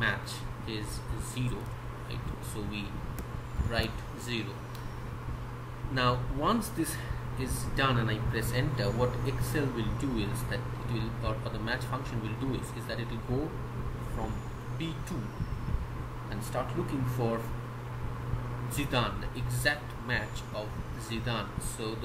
is 0, right? So we write 0. Now once this is done and I press enter, what Excel will do is that it will, or the match function will do is that it will go from B2 and start looking for Zidane, the exact match of Zidane. So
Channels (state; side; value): identical; both; correlation 1.00